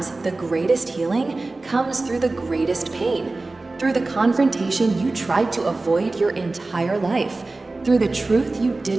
the greatest healing comes through the greatest pain, through the confrontation you tried to avoid your entire life, through the truth you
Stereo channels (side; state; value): left; quieter; 3.3 dB